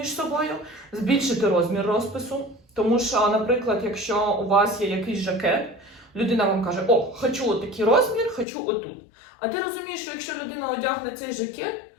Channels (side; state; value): right; drops out; at 8.5 s